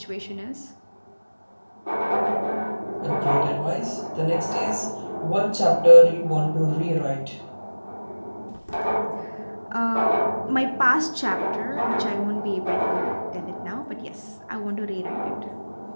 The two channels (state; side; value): inverted; both; correlation -1.00